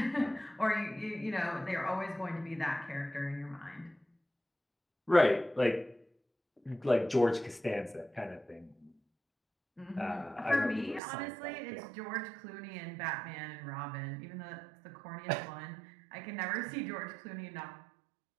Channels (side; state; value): left; drops out; at 11.0 s